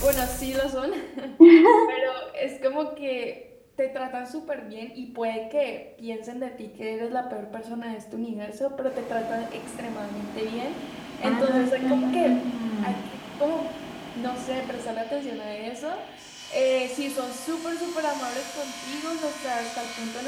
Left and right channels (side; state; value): both; identical; correlation 1.00